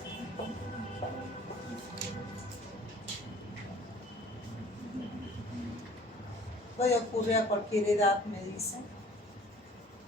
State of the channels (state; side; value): normal; both; correlation 0.50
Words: Puede ocurrir a cualquier edad, me dicen.